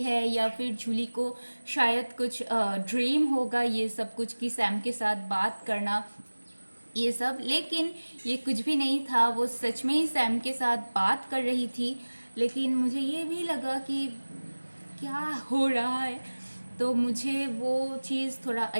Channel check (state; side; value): inverted; both; correlation -1.00